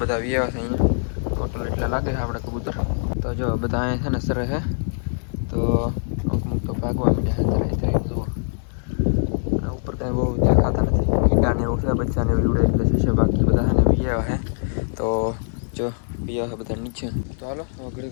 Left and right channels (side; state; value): right; silent; digital silence